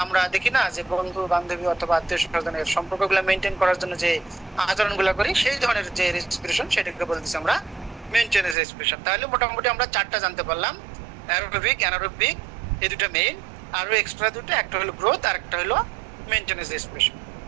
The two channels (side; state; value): left; drops out; at 8.6 s